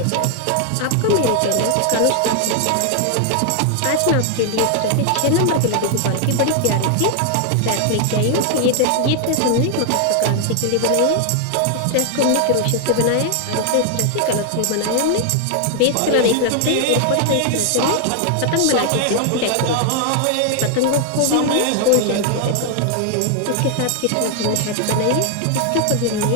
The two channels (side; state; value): both; different; correlation 0.00